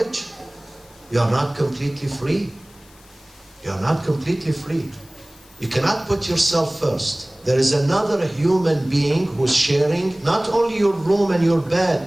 you are not completely free. You are not completely free. You cannot put yourself first. There is another human being who's sharing not only your room and your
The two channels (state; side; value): noise; left; hiss, 27 dB below the sound